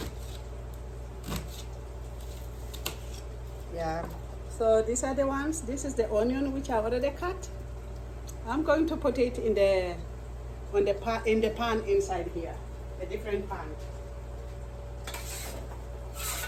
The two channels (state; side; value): identical; both; correlation 1.00